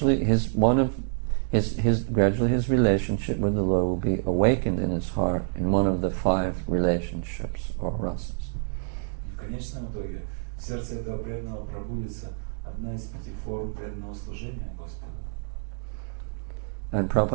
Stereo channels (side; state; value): left; silent; digital silence